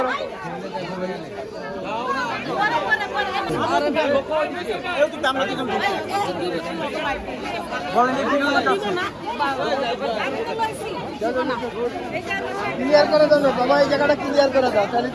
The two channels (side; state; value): both; identical; correlation 1.00